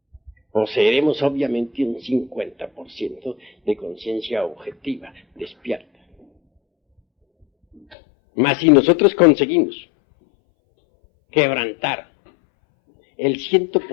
poseeremos obviamente un 50% de conciencia objetiva, despierta. Mas si nosotros conseguimos quebrantar el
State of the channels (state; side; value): drops out; right; at 8.0 s